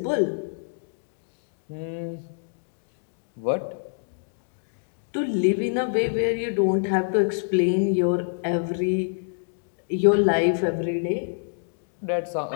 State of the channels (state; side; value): silent; right; digital silence